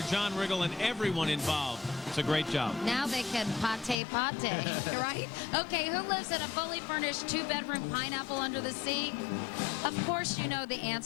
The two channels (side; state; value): right; drops out; at 4.0 s